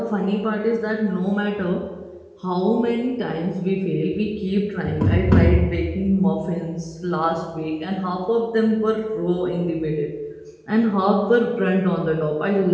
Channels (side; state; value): both; identical; correlation 1.00